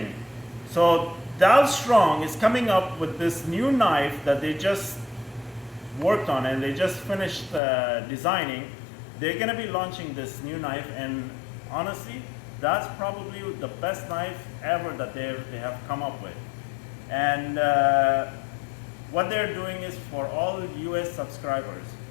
So Dalstrong is coming up with this new knife that they just worked on and they just finished designing. They're going to be launching this new knife, and honestly, that's probably the best knife ever that they have come up with. And what they're doing is for all US subscribers.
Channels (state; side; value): drops out; right; at 7.6 s